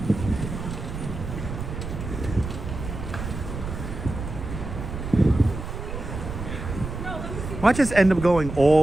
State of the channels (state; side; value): noise; right; rumble, 7 dB below the sound